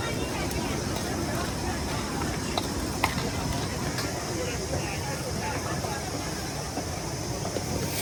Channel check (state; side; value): identical; both; correlation 1.00